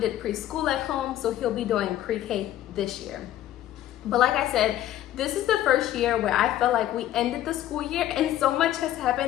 preschool at home, so he'll be doing pre-K this year. But like I said, this is the first year where I felt like we ended the school year and so much has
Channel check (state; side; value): quieter; right; 12.9 dB